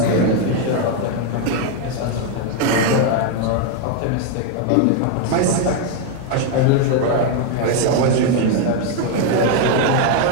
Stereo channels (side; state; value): both; different; correlation 0.01